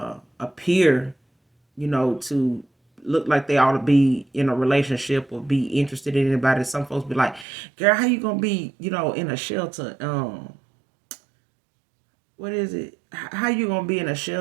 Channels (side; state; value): left; drops out; at 7.5 s